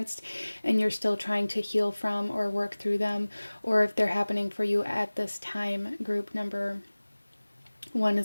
and you're still trying to heal from or work through them, or if they're happening for you at this time. Group number one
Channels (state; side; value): inverted; both; correlation -1.00